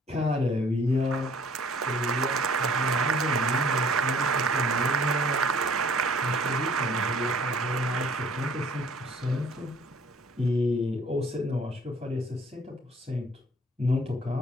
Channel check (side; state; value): both; normal; correlation 0.55